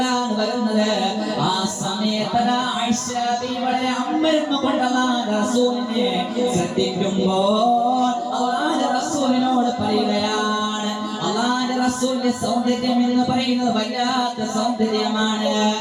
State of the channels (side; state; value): both; identical; correlation 1.00